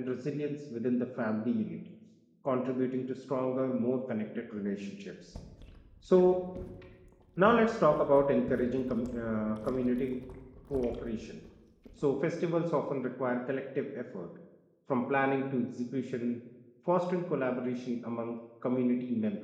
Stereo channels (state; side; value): identical; both; correlation 1.00